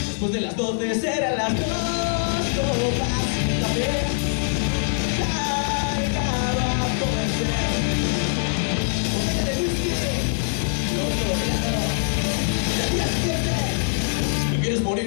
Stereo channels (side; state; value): right; silent; digital silence